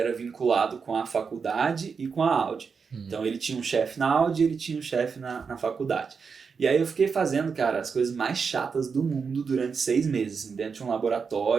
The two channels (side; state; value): left; quieter; 5.6 dB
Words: vinculado com a faculdade e com a Audi. Então ele tinha um chefe na Audi e ele tinha um chefe na faculdade. E aí eu fiquei fazendo, cara, as coisas mais chatas do mundo durante 6 meses, assim, dentro de um